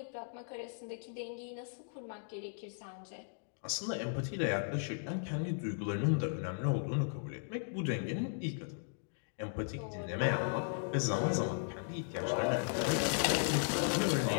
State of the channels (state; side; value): silent; right; digital silence